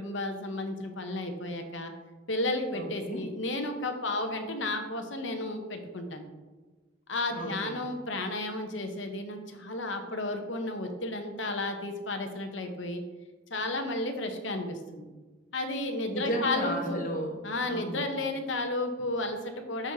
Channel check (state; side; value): normal; both; correlation 0.06